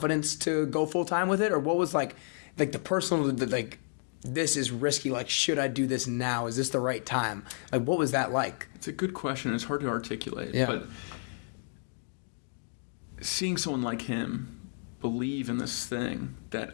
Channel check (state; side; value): silent; right; 57 dB below the other